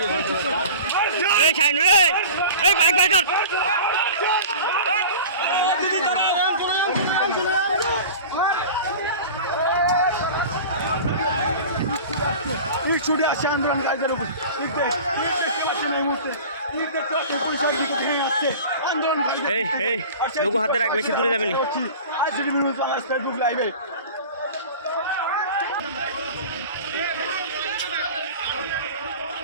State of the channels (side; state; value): both; inverted; correlation -0.37